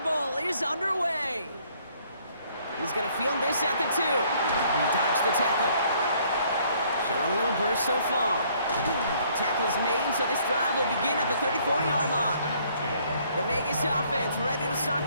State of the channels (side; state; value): both; inverted; correlation -0.63